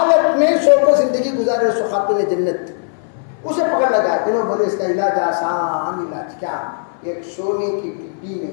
میں سو کو زندگی گزارے سو خاتون جنت. اسے پکڑ لگا, انہوں بولے اس کا علاج آسان علاج کیا, ایک سونے کی ڈبی میں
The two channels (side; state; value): right; silent; 61 dB below the other